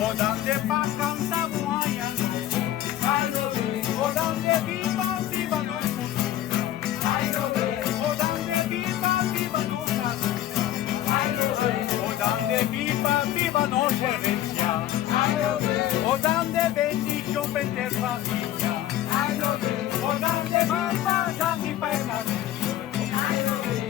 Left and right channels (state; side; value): quieter; right; 12.9 dB